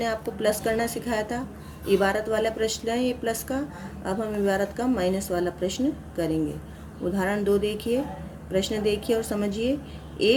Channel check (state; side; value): identical; both; correlation 1.00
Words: आपको प्लस करना सिखाया था, इबारत वाला प्रश्न है ये प्लस का। अब हम इबारत का माइनस वाला प्रश्न करेंगे। उदाहरण 2 देखिए, प्रश्न देखिए और समझिए।